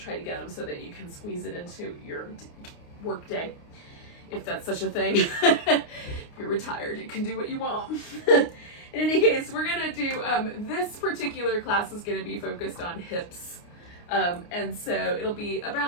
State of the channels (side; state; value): right; late; 29 ms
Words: to get them so that you can squeeze it into your work day, if that's such a thing. If you're retired, you can do what you want. In any case, we're gonna do, this particular class is gonna be focused on hips. And so it'll be